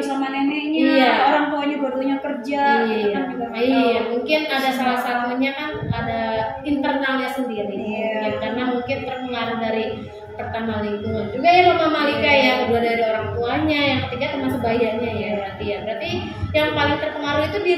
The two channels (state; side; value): identical; both; correlation 1.00